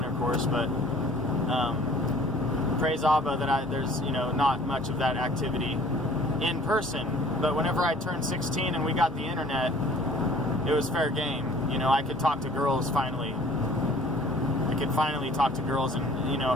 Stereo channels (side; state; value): both; normal; correlation 0.52